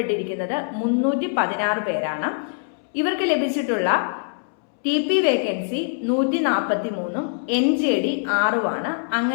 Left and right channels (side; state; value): right; silent; 63 dB below the other